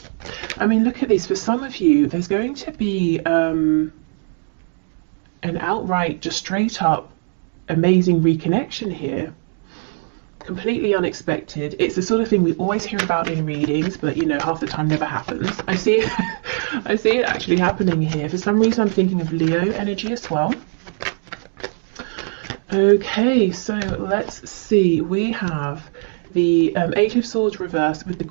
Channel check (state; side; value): silent; left; 59 dB below the other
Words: I mean, look at this. For some of you, there's going to be an outright, just straight up amazing reconnection here. Completely unexpected. It's the sort of thing we always hear about in readings, but you know, half the time never happens. I see it actually happening here. For some reason I'm thinking of Leo energy as well. Okay, so let's see. We have the Eight of Swords reversed with the